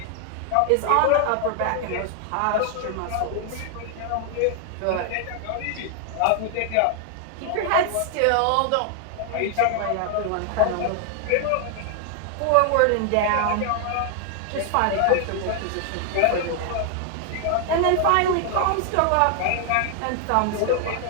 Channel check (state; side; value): different; both; correlation 0.00